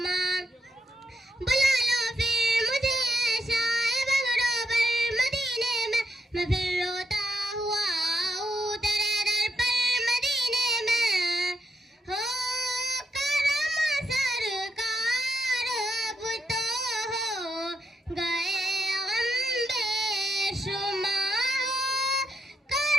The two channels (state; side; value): normal; both; correlation 0.82